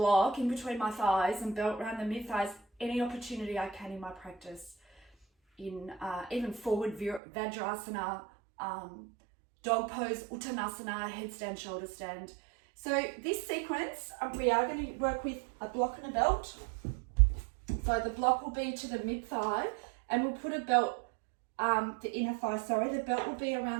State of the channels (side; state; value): left; drops out; at 7.2 s